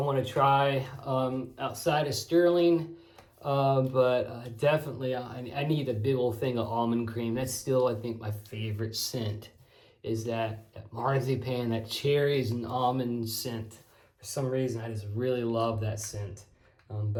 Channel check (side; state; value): both; identical; correlation 1.00